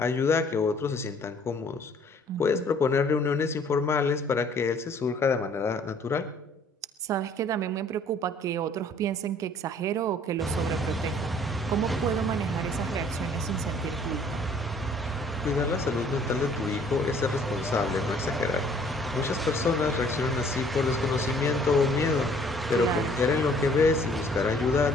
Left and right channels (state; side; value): normal; both; correlation 0.58